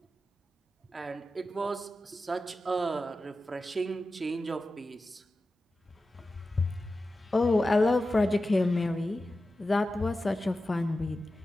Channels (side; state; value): both; normal; correlation 0.93